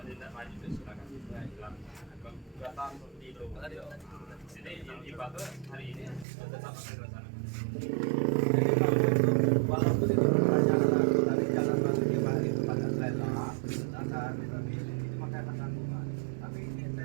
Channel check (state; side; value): drops out; left; at 6.2 s